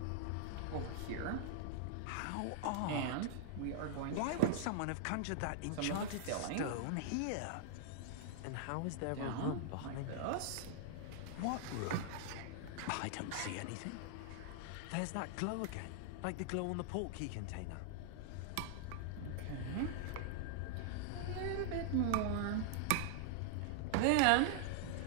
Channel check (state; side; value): different; both; correlation -0.01